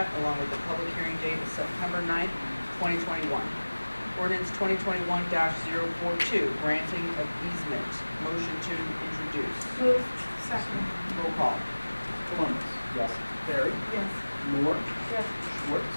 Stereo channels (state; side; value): inverted; both; correlation -1.00